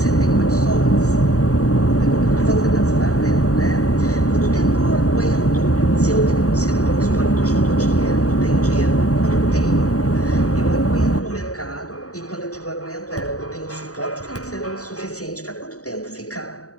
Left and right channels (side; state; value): right; late; 0.66 ms